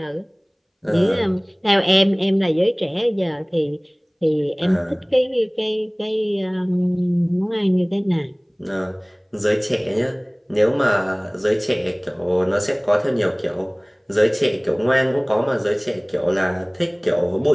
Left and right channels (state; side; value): identical; both; correlation 1.00